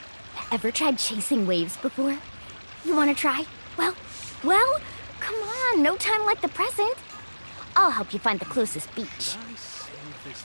Ever tried chasing waves before? You want to try? Well, come on, no time like the present. I'll help you find the closest beach. Should I save this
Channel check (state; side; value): inverted; both; correlation -1.00